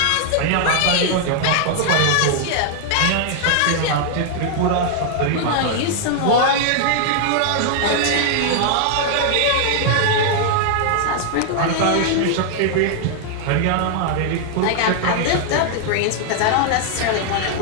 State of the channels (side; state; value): both; different; correlation 0.00